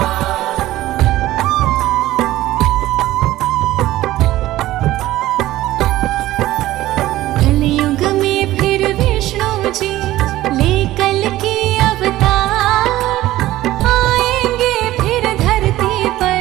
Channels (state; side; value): quieter; left; 15.7 dB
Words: कलयुग में फिर विष्णु जी ले कल की अवतार, आएंगे फिर धरती